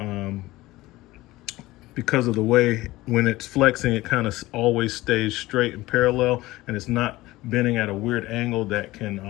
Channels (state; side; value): quieter; right; 18.4 dB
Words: because of the way when it's flexing, it kind of always stays straight and parallel, and it's not bending at a weird angle that can